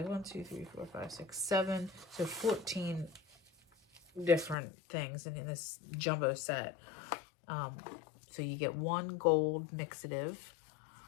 1, 2, 3, 4, 5, 6, 7. So 14 different things in this jumbo set. So you get one gold mixative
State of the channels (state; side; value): drops out; right; at 4.5 s